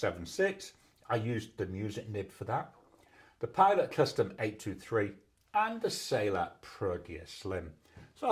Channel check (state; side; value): identical; both; correlation 1.00